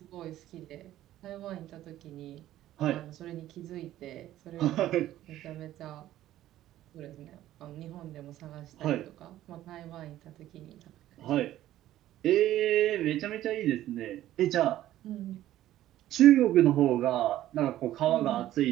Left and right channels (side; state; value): left; quieter; 13.6 dB